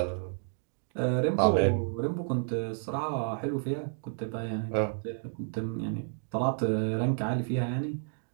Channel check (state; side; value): silent; left; digital silence